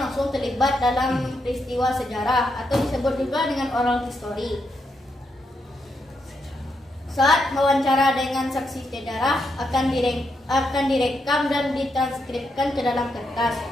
langsung terlibat dalam peristiwa sejarah atau disebut juga dengan oral history. Saat wawancara dengan saksi sejarah akan direkam dan ditranskripkan ke dalam kertas.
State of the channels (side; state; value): both; normal; correlation 0.81